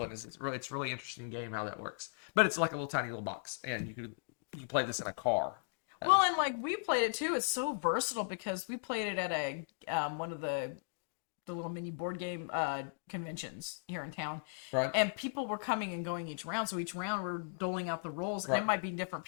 and it's really interesting game how that works. But it's like a tiny little box, and you can play this in a car. Well, and like we played it too. It's so versatile because we played it at a one of the little mini board game conventions here in town. Right. And people were coming and going each round. So each round we're doling out the roles. And it might be different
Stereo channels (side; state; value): right; silent; digital silence